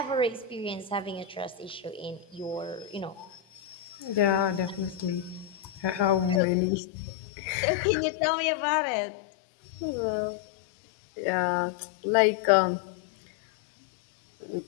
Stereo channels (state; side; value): drops out; right; at 6.4 s